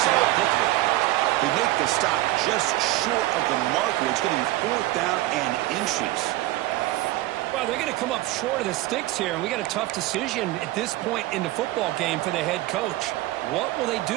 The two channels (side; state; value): left; quieter; 17.1 dB